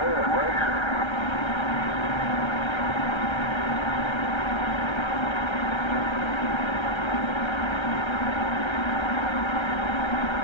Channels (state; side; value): late; right; 1.3 ms